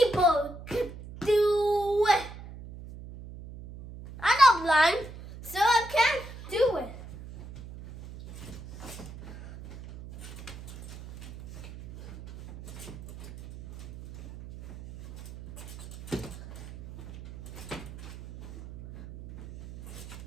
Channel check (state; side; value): noise; right; hum, 14 dB below the sound